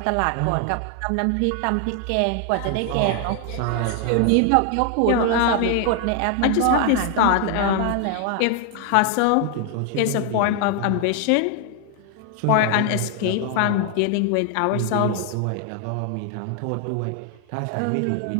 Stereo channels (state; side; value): different; both; correlation 0.00